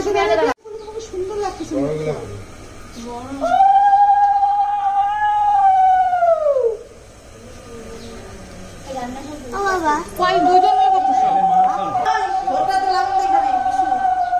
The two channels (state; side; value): identical; both; correlation 1.00